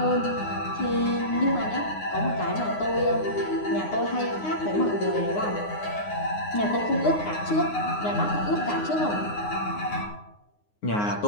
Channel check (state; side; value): late; right; 9.6 ms